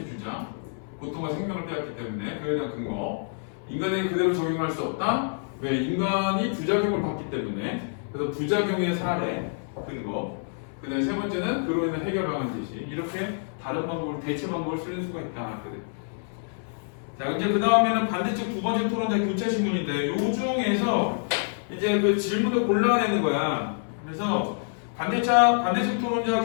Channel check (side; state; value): right; silent; 60 dB below the other